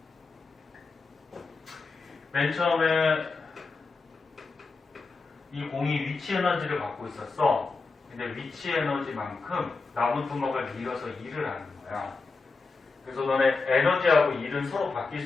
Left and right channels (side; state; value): right; quieter; 4.1 dB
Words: 맨 처음에 이 공이 위치 에너지를 갖고 있었어. 근데 위치 에너지만큼 나무 토막을 밀어서 일을 하는 거야. 그래서 너네 에너지하고 일은 서로 바뀔